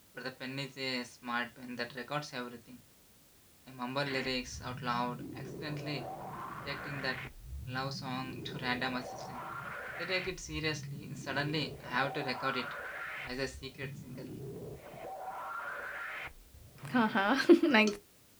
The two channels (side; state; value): both; identical; correlation 1.00